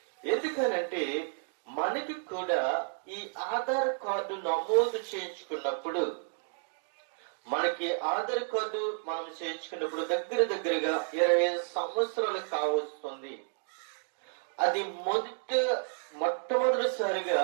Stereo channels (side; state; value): left; silent; digital silence